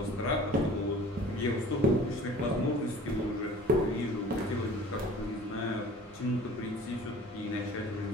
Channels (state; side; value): normal; both; correlation 0.46